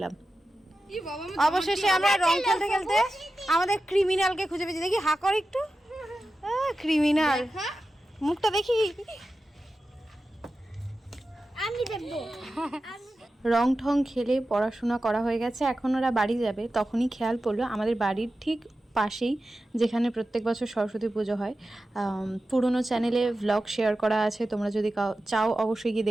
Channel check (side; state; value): both; normal; correlation 0.93